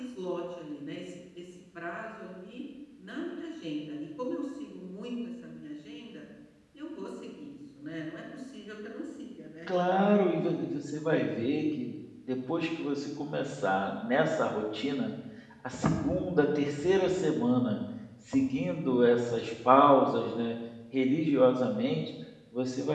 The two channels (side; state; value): both; identical; correlation 1.00